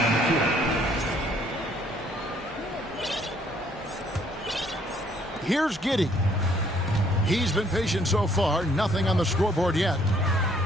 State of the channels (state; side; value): normal; both; correlation 0.64